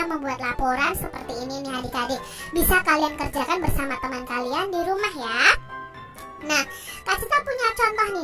membuat laporan seperti ini nih, adik-adik. Bisa kalian kerjakan bersama teman kalian di rumah ya. Nah, Kak Citra punya contoh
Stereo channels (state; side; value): identical; both; correlation 1.00